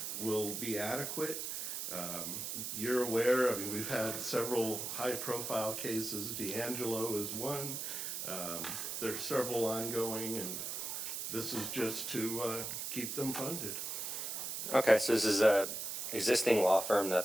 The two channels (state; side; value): noise; right; hiss, 4 dB below the sound